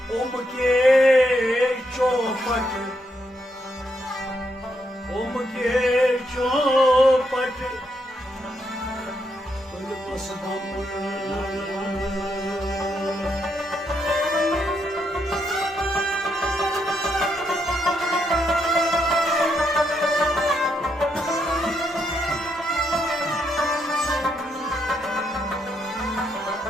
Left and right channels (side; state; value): both; normal; correlation 0.78